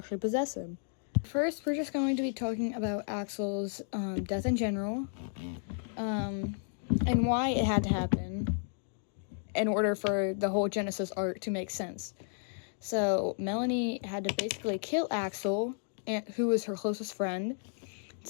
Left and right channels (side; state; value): right; silent; digital silence